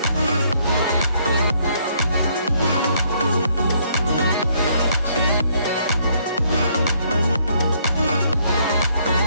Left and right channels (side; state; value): both; inverted; correlation -0.68